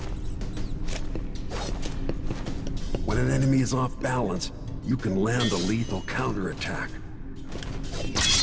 When an enemy is off balance, you can land a lethal counterattack.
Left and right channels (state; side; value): identical; both; correlation 1.00